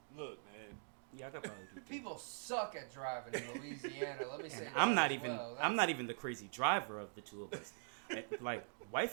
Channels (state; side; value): silent; left; digital silence